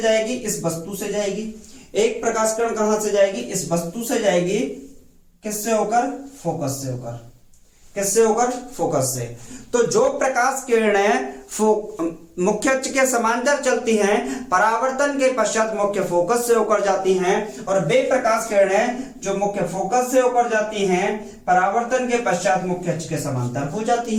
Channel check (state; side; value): identical; both; correlation 1.00